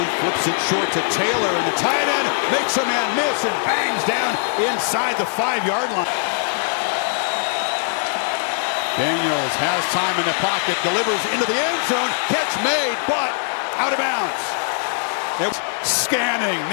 flips it short to Taylor, and the tight end makes a man miss and bangs down inside the 5-yard line. Daniels has time in the pocket, delivers into the end zone, catch made, but out of bounds. It was scanning,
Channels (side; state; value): right; silent; 65 dB below the other